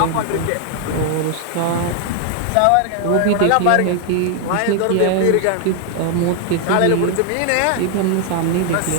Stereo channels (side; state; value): both; different; correlation 0.00